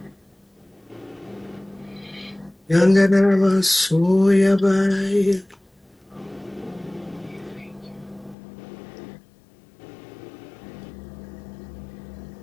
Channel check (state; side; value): drops out; right; at 8.3 s